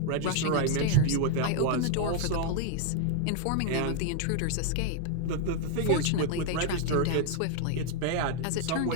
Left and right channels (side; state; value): both; different; correlation 0.00